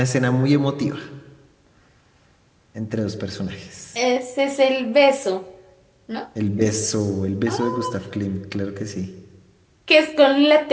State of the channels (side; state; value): both; identical; correlation 1.00